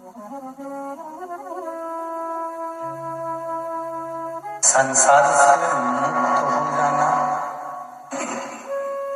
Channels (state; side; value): identical; both; correlation 1.00